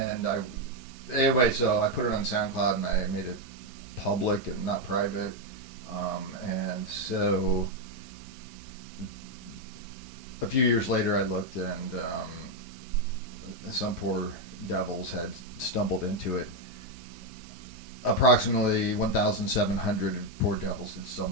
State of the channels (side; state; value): both; normal; correlation 0.03